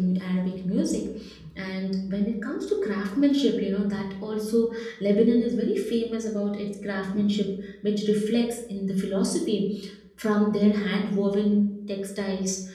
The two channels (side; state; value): both; identical; correlation 1.00